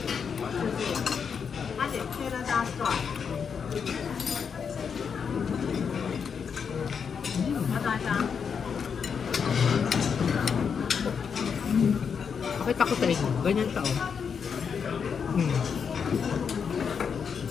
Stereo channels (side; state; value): right; quieter; 6.6 dB